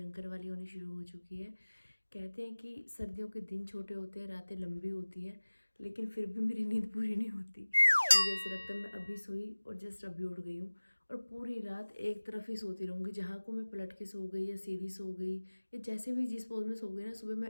वाली होनी शुरू हो चुकी है। कहते हैं कि सर्दियों के दिन छोटे होते हैं, रातें लंबी होती हैं, लेकिन फिर भी मेरी नींद पूरी नहीं होती। मुझे ऐसा लगता है मैं अभी सोई और जस्ट अभी उठ गई हूँ और पूरी रात एक तरफ ही सोती रहूँगी। जहाँ को मैं पलट के सो गई या सीधी सो गई या जैसे भी जिस पोज में सो गई ना, सुबह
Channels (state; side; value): inverted; both; correlation -1.00